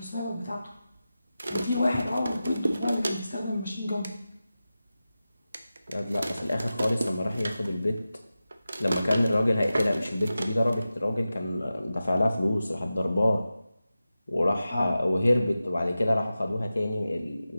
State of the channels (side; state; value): both; inverted; correlation -0.94